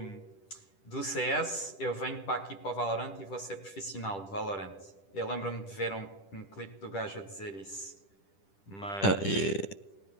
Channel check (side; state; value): right; late; 10 ms